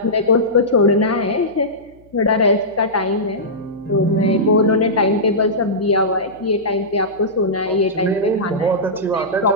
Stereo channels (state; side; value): noise; left; hum, 29 dB below the sound